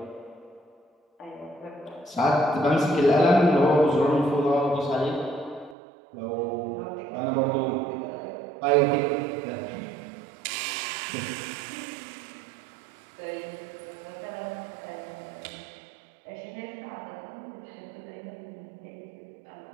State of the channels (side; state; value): left; drops out; at 5.8 s